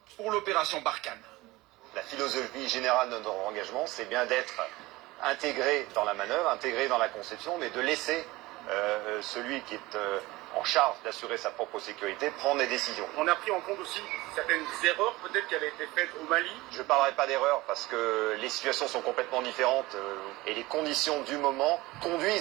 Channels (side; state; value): left; quieter; 20.1 dB